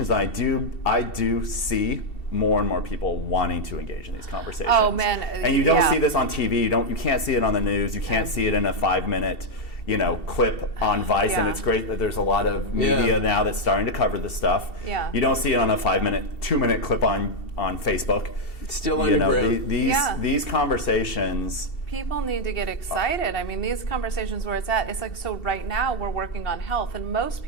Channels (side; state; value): right; late; 2.7 ms